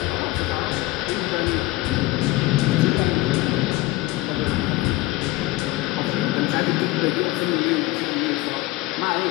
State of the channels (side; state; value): right; quieter; 18.7 dB